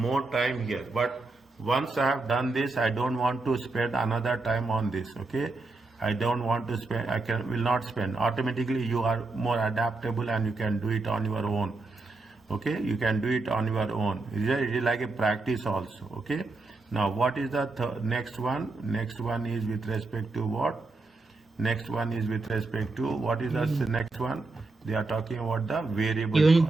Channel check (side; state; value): left; quieter; 3.4 dB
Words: time here, but once I have done this, I don't want to spend another time on this, okay? I don't want to spend, will not spend. Automatically you are more adaptable and you can do it on your own, okay? You can do it on your own. It is like a practice also, okay? Now what is the next one? Next one is with respect to what? Next one is with respect to, what is the next one? They are talking about the variable Unit